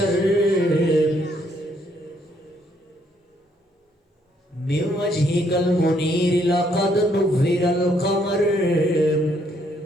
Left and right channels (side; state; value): both; normal; correlation 0.70